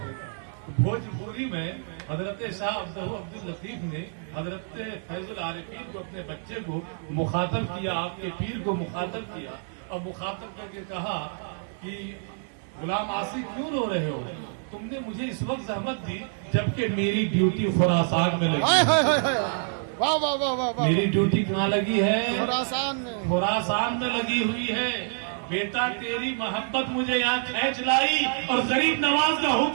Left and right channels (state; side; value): silent; left; digital silence